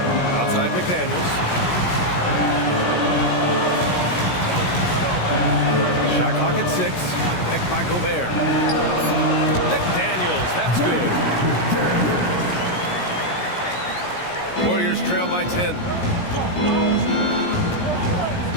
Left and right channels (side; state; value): right; late; 17 ms